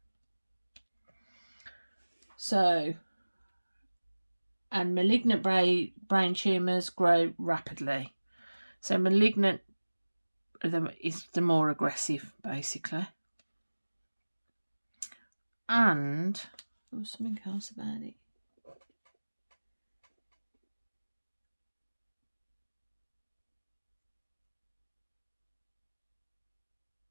So, and malignant brain tumours grow rapidly. So malignant is the more aggressive, basically. And there was something else about it.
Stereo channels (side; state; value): both; inverted; correlation -1.00